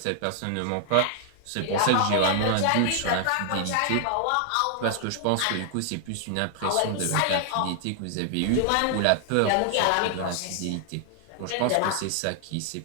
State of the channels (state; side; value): different; both; correlation 0.00